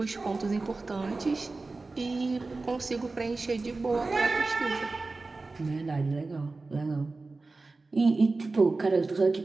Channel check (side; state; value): left; quieter; 3.6 dB